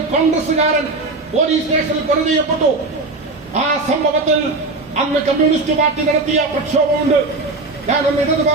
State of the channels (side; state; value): left; quieter; 3.3 dB